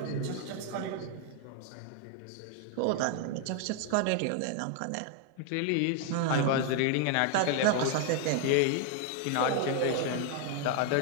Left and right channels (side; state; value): both; different; correlation 0.00